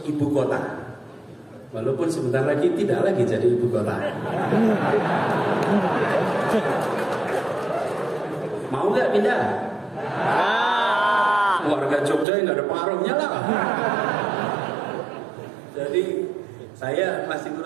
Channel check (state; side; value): drops out; left; at 12.2 s